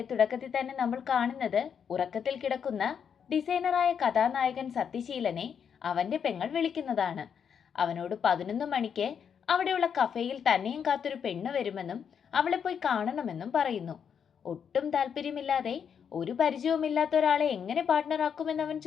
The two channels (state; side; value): quieter; right; 7.4 dB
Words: തുടക്കത്തിൽ തന്നെ നമ്മൾ കാണുന്നത് ഉറക്കത്തിൽ കിടക്കുന്ന ഡിസൈനറായ കഥാനായകൻ സത്യശീലനെ അവന്റെ പെങ്ങൾ വിളിക്കുന്നതാണ്. അവനോട് 11 മണിക്ക് അവിടെയുള്ള കഫേയിൽ തന്നെയും കാത്തൊരു പെണ്ണ് വരുമെന്നും അവളെ പോയി കാണണമെന്നും പറയുന്നു. ഒട്ടും താല്പര്യമില്ലാതെ ഒരു പരിചയവുമില്ലാത്ത ഒരാളെ എങ്ങനെ പാർട്ട്ണറാക്കുമെന്ന് അവൻ